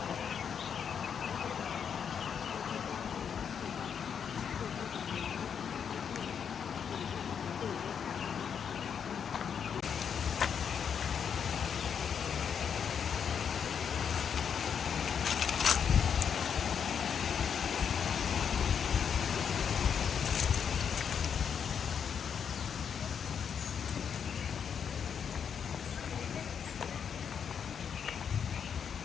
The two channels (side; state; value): right; quieter; 7.4 dB